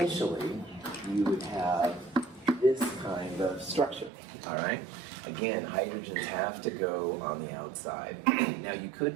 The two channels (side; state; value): left; drops out; at 4.1 s